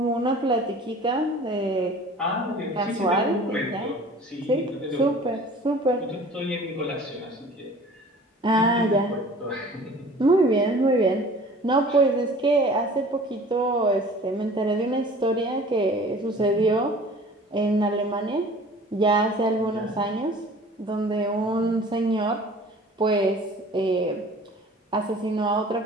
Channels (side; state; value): both; normal; correlation 0.46